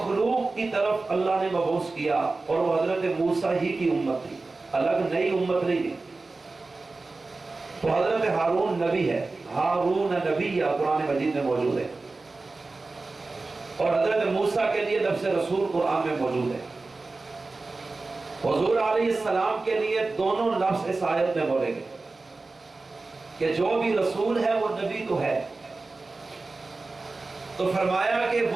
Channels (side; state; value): left; quieter; 3.6 dB